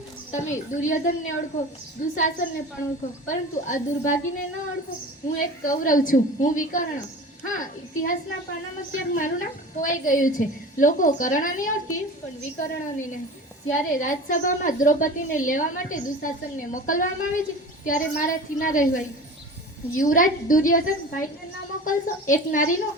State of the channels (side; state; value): both; normal; correlation 0.36